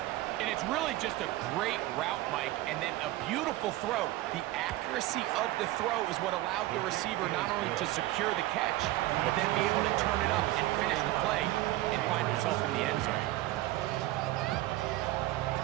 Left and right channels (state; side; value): quieter; left; 16.8 dB